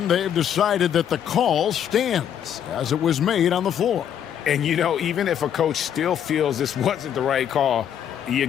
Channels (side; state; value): right; quieter; 9.4 dB